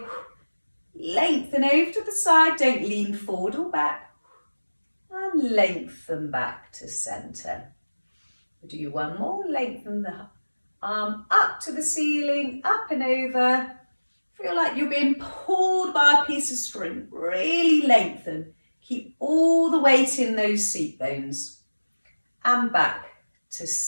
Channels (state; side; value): inverted; both; correlation -1.00